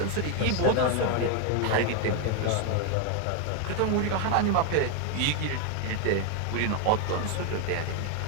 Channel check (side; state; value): both; different; correlation 0.01